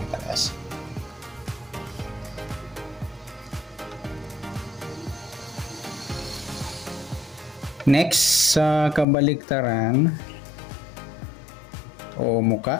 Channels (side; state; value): right; drops out; at 9.1 s